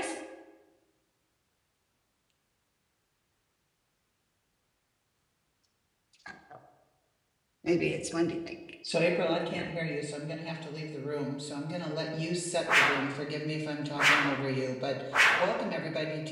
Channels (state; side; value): identical; both; correlation 1.00